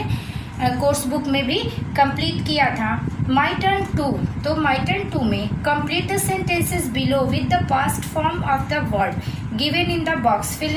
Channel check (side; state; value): both; identical; correlation 1.00